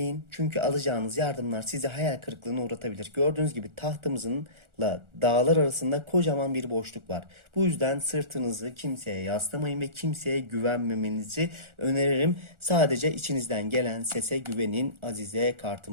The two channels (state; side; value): late; left; 1.4 ms